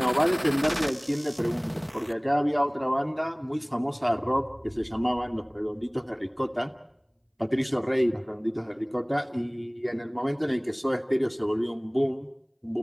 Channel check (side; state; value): both; identical; correlation 1.00